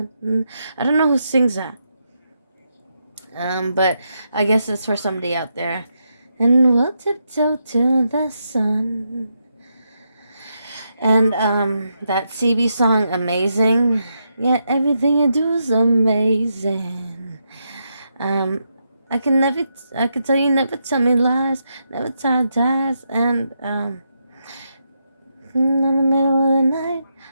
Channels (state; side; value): inverted; both; correlation -0.82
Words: I don't know who sings that, but I guess it's for somebody out there. "And we'll tiptoe to the sun." And that CB song, "Amazing." Yeah, everything you do is amazing. I can tell you never tell me lies, never tell ties, and in the middle of the night,